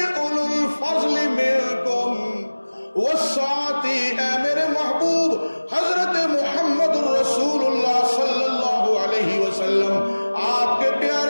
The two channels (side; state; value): both; inverted; correlation -1.00